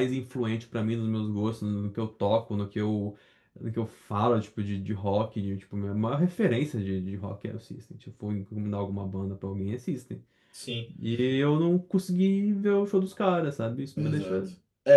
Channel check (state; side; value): identical; both; correlation 1.00